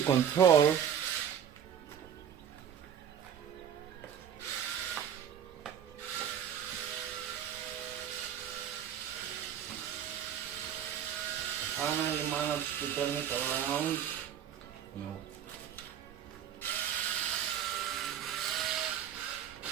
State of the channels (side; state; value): left; quieter; 8.9 dB